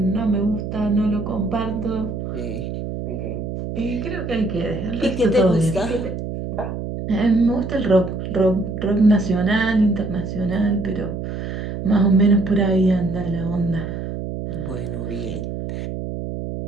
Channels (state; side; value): noise; right; hum, 6 dB below the sound